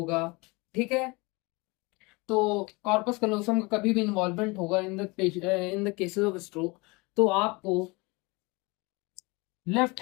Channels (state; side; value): quieter; right; 26.0 dB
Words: ठीक है, तो कॉर्पस कलोसम का कभी भी इन्वॉल्वमेंट होगा in the cases of stroke, तो आपको लेफ्ट